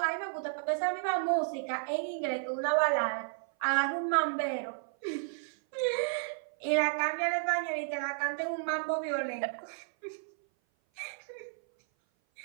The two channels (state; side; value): silent; left; 56 dB below the other